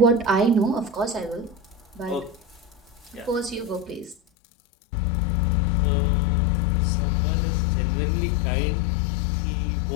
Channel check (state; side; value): drops out; right; at 4.2 s